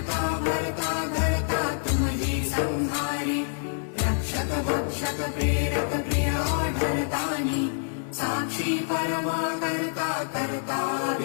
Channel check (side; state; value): right; silent; digital silence